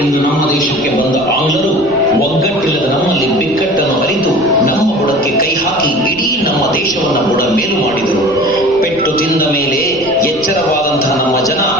ಎಂದು ನಮ್ಮ ದೇಶಕ್ಕೆ ಬಂದ ಆಂಗ್ಲರು ಒಗ್ಗಟ್ಟಿಲ್ಲದ ನಮ್ಮಲ್ಲಿ ಬಿಕ್ಕಟ್ಟನ್ನು ಅರಿತು ನಮ್ಮ ಬುಡಕ್ಕೆ ಕೈ ಹಾಕಿ ಇಡೀ ನಮ್ಮ ದೇಶವನ್ನ ಬುಡ ಮೇಲು ಮಾಡಿದರು. ಪೆಟ್ಟು ತಿಂದ ಮೇಲೆ ಎಚ್ಚರವಾದಂತಹ ನಮ್ಮ ಜನ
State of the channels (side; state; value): right; noise; rumble, 20 dB below the sound